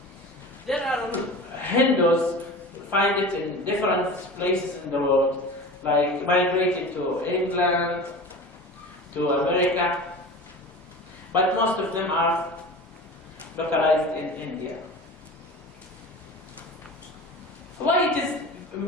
There are Hindus, you find it in different places in the world, like migrated to England, to America, but most of them are localized in India. Why it is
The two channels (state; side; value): normal; both; correlation 0.34